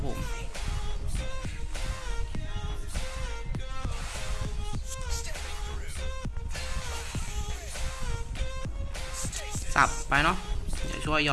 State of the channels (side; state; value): both; identical; correlation 1.00